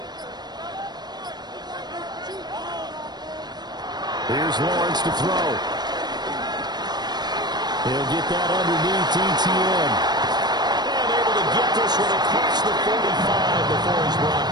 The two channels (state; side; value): late; left; 0.20 ms